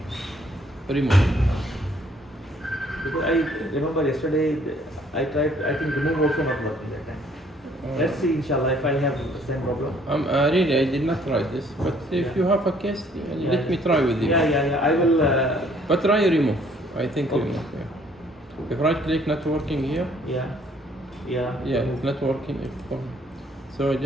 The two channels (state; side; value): normal; both; correlation 0.62